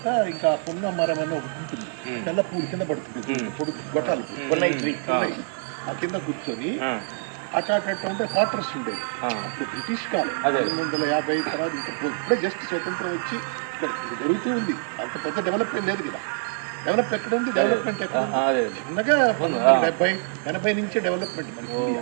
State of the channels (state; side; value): silent; left; digital silence